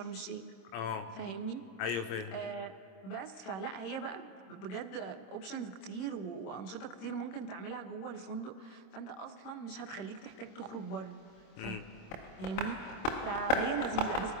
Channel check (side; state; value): right; late; 26 ms